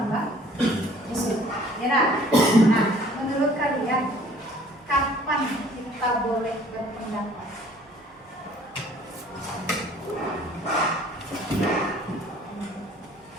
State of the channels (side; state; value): both; normal; correlation 0.54